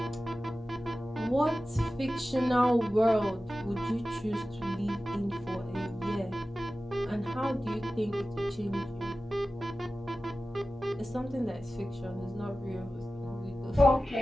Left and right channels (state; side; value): normal; both; correlation 0.95